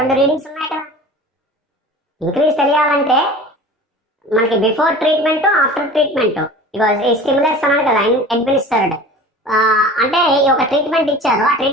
రీడింగ్స్ ఉన్నాయి కదా. ఇంక్రీజ్ తెలియాలంటే మనకి బిఫోర్ ట్రీట్మెంట్, ఆఫ్టర్ ట్రీట్మెంట్, ఈ స్టిమ్యులస్ అన్నాడు కదా అడ్మినిస్టర్డ్. అంటే ఒక ట్రీట్మెంట్ ఇచ్చారు, ఆ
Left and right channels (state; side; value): normal; both; correlation 0.39